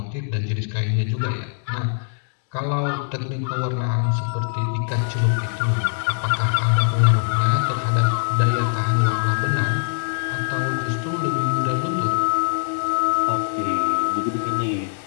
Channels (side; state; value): right; silent; digital silence